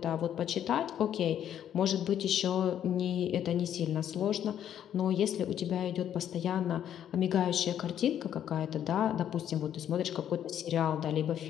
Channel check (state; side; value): quieter; right; 10.1 dB